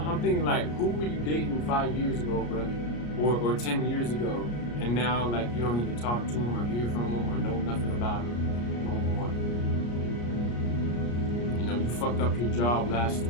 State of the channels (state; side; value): late; right; 34 ms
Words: I'm thinking, like, who were you dating 5 years ago, bro? Or 10 years ago, and now, like, you don't even talk to him or hear from him or know nothing about him no more. You know, you fucked up your job last